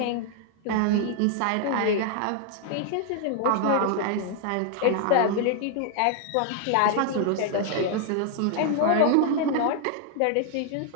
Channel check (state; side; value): different; both; correlation 0.00